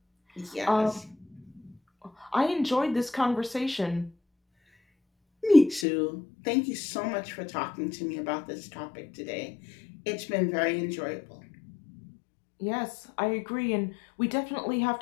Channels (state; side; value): drops out; right; at 5.9 s